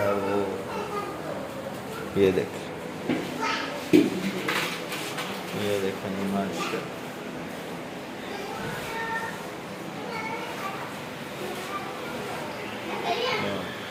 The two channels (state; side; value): identical; both; correlation 1.00